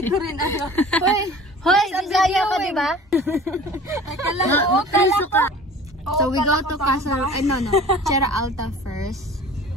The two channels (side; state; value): both; normal; correlation 0.44